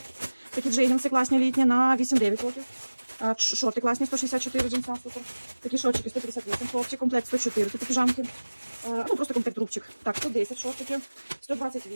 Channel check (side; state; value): both; inverted; correlation -1.00